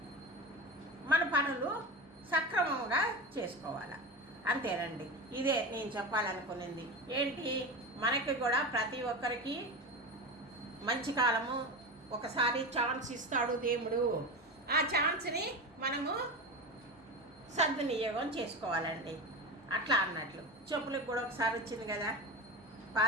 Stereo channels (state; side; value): normal; both; correlation 0.24